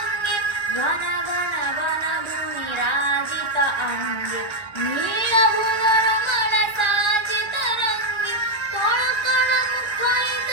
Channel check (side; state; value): right; late; 1.4 ms